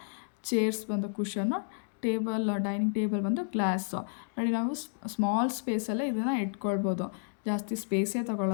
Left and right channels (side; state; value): right; silent; digital silence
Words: ಚೇರ್ಸ್ ಬಂದು ಕುಷನು, ಡೈನಿಂಗ್ ಟೇಬಲ್ ಬಂದು ಗ್ಲಾಸು. ನೋಡಿ, ನಾವು ಸ್ಮಾಲ್ ಸ್ಪೇಸಲ್ಲೇ ಇದನ್ನು ಇಟ್ಕೊಳ್ಬೋದು, ಜಾಸ್ತಿ ಸ್ಪೇಸೇ